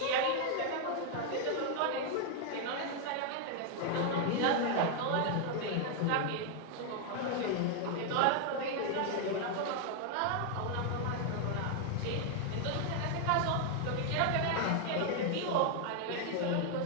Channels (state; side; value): different; both; correlation 0.00